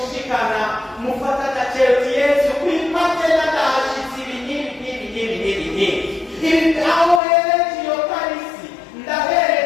mufata agaciro Yesu kwipate n'agahashitsi ibi aho hereje iyo karisi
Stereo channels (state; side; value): drops out; right; at 7.2 s